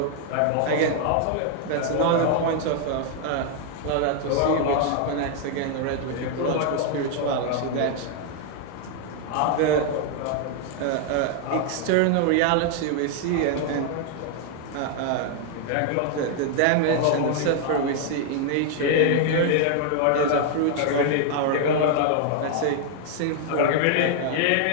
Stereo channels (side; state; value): both; different; correlation 0.00